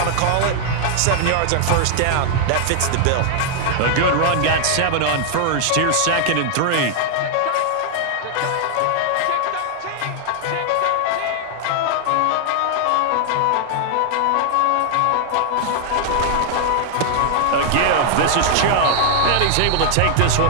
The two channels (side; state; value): both; different; correlation 0.00